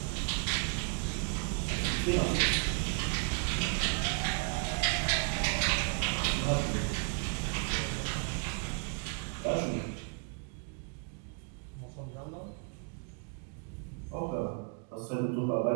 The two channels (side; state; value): left; quieter; 37.9 dB